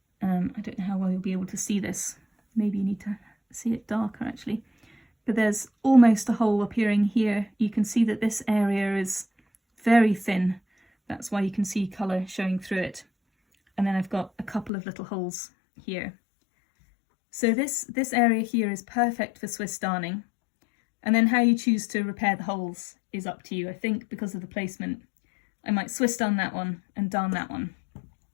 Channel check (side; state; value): right; drops out; at 14.7 s